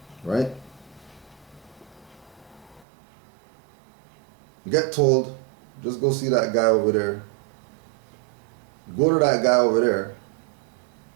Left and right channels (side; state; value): left; drops out; at 2.9 s